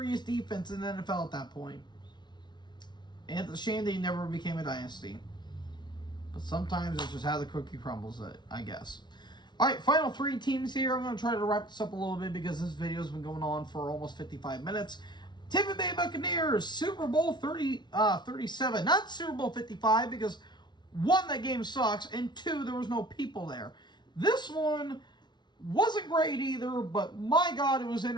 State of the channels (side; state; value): right; late; 0.21 ms